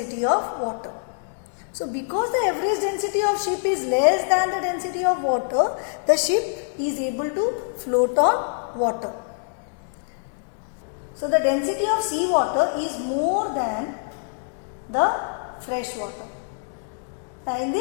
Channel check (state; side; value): silent; right; digital silence